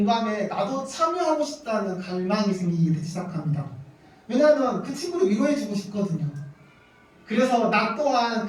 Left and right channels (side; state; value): both; identical; correlation 1.00